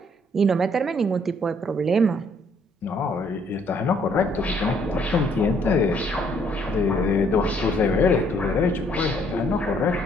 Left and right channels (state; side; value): normal; both; correlation 0.66